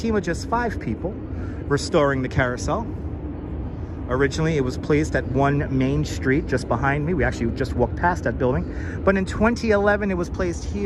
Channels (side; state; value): both; identical; correlation 1.00